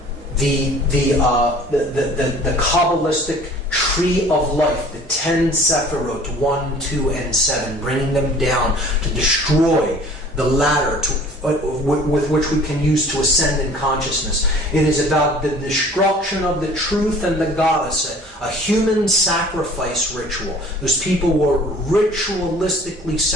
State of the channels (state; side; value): normal; both; correlation 0.49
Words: the Kabbalistic tree of life, the 10 Sephirot, 1, 2, and 7, bringing them down to destroy the ladder with which we can use to ascend in consciousness. It is about the destruction of the truth and the goddess, a human sacrifice ritual. Those people were ritualistically